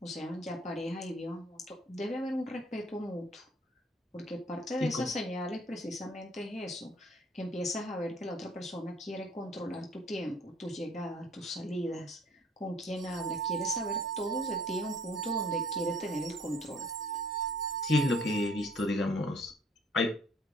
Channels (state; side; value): normal; both; correlation 0.56